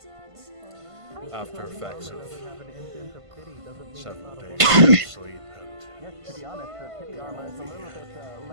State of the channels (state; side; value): late; left; 1.5 ms